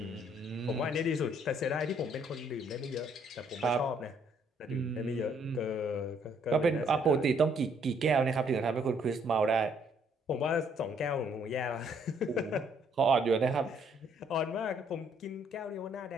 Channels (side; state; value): both; normal; correlation 0.66